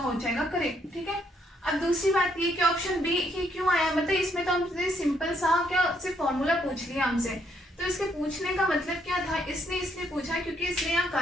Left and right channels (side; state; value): both; normal; correlation 0.72